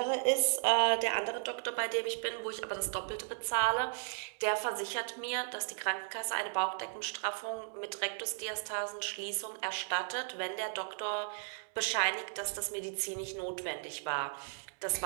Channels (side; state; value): left; silent; digital silence